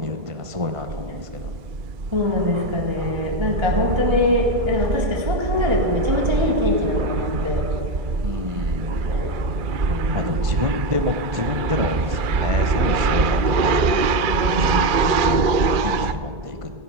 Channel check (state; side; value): late; left; 2.3 ms